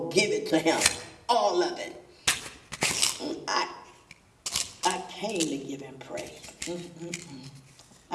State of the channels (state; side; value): identical; both; correlation 1.00